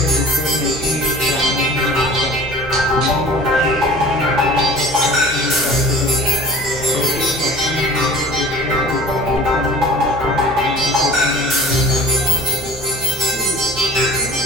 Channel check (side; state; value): both; normal; correlation 0.43